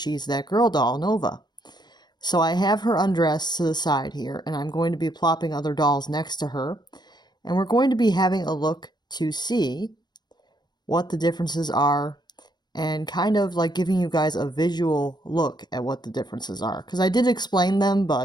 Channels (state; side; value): late; right; 0.21 ms